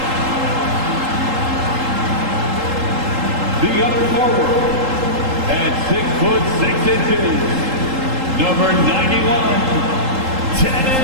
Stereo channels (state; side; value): late; left; 3.8 ms